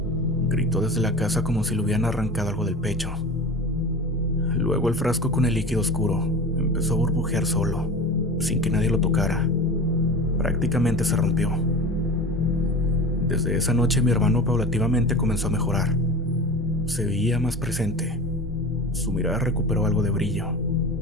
gritó desde la casa como si le hubieran arrancado algo del pecho. Luego el frasco con el líquido oscuro empezó a burbujear solo, sin que nadie lo tocara. Prácticamente se rompió. Desde esa noche mi hermano paulativamente comenzó a mejorar. Se veía más presente. Su mirada recuperó algo de brillo.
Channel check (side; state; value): both; normal; correlation 0.33